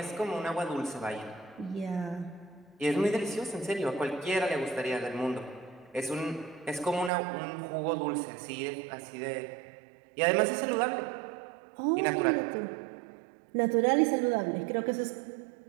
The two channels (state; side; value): drops out; left; at 7.1 s